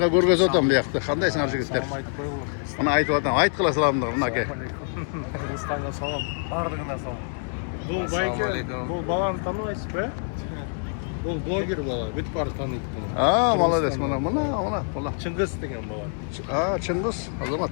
görgöz otam bu yoqda. Kandaysыңар жигиттер? Мына айтып атам, айткыла саламдыр мынаке. Kırgızistan'a salam, bardığına salam. Bu bayke, bu balаны tanıyasız be? Bu blogger bala, bütün barı tanıydı bunu. Aa, молодец, mına. Çıngız degen bala. Aa, Çıngız, azamat.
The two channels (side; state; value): right; silent; 61 dB below the other